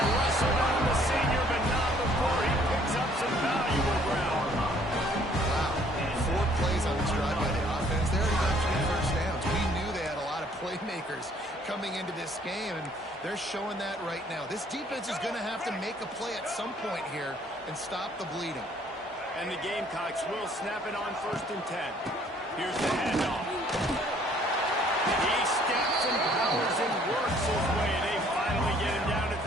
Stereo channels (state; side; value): normal; both; correlation 0.61